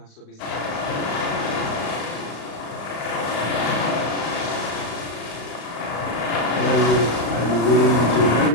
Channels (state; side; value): late; right; 35 ms